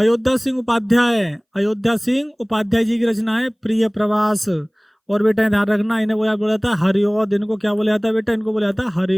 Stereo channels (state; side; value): identical; both; correlation 1.00